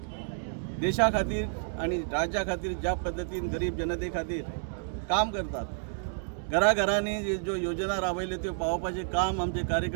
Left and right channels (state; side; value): silent; left; digital silence